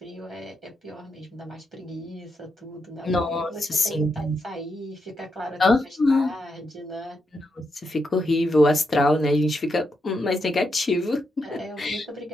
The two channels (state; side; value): normal; both; correlation 0.83